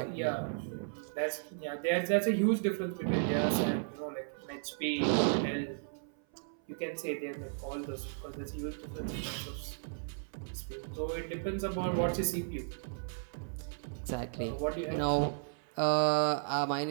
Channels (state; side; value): silent; left; 55 dB below the other